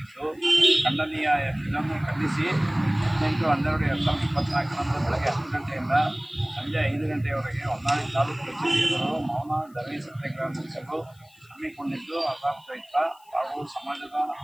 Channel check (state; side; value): noise; left; hiss, 30 dB below the sound